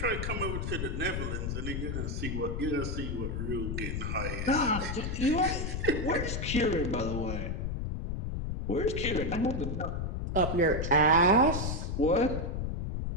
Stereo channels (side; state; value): left; noise; rumble, 2 dB below the sound